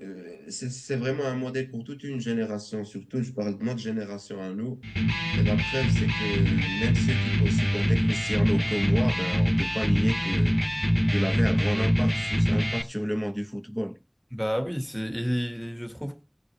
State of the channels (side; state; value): both; identical; correlation 1.00